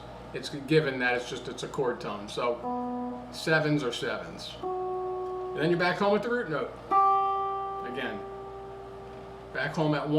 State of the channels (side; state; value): both; identical; correlation 1.00